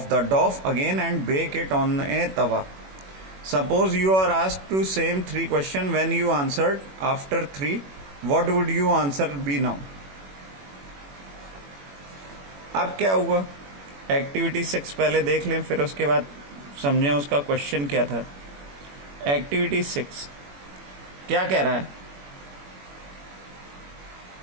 the dough again and bake it on a tava. Suppose you are asked to same 3 question when you answered after 3, what would you answer be now? अब क्या हुआ? Activity 6 पहले देख लें, फिर उसके बाद समझें उसका क्वेश्चन क्या था। एक्टिविटी 6 क्या कह रहा है?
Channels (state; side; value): late; left; 21 ms